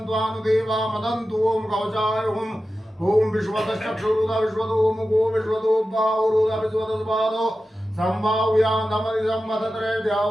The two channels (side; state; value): both; normal; correlation 0.93